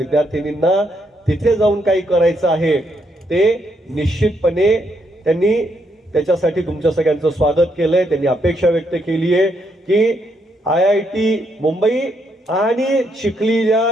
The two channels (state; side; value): normal; both; correlation 0.76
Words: तिथे जाऊन काही करायचं आहे ते निश्चितपणे त्यांनी त्याच्यासाठी तुमच्या सगळ्यांचं स्वागत केलंय. त्यांनी अपेक्षा व्यक्त केली आहे की IIT मुंबई आणि चिखलीच्या